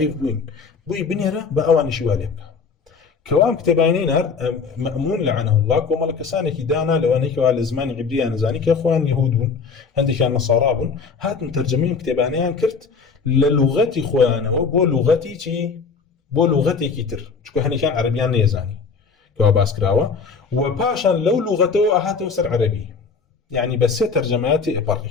بووین بۆی بنێرە بە ئەوانیشی وا لێ بکە کەوام کتێبانی نار مەمون لعنه الله کۆمەڵە کەسانێکی دانا لەوانەی کەوا لە زمانی عیبریان نەزانی کە خۆیان یەهود بوون هەندێکیان نەسارا بوون هاتن تەرجەمەی کتێبانیان کرد لە لوغەتی خۆیانەوە بۆ لوغەتی چی بۆ لوغەتێکی تر چونکە هەنێکیان عەرەبیان نەیەزانی کەوا باس کراوە و پاشان لەو لوغەتەوە ئەهاتەوە سەر عەرەبی یعنی بە سێ تەرجەمەیاتی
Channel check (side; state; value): right; quieter; 5.2 dB